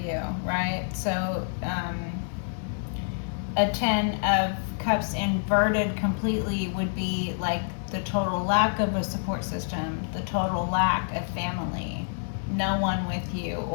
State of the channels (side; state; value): right; silent; digital silence